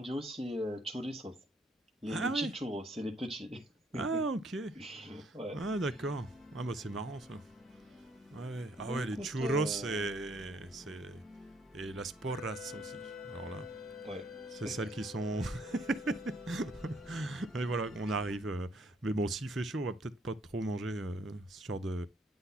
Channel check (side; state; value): both; normal; correlation 0.66